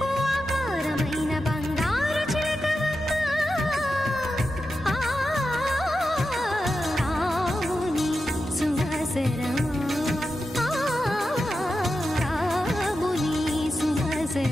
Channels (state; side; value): normal; both; correlation 0.90